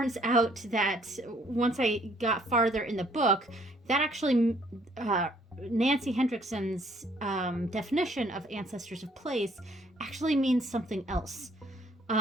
out that once I got farther in the book, that actually Nancy Hendrickson's definition of ancestors of place actually means something else.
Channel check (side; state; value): both; normal; correlation 0.63